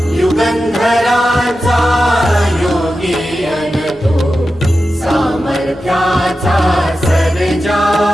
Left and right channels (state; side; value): normal; both; correlation 0.92